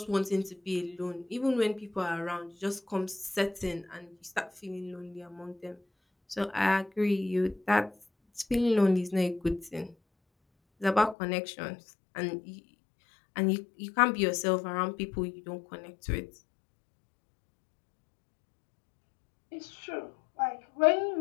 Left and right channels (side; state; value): right; drops out; at 11.2 s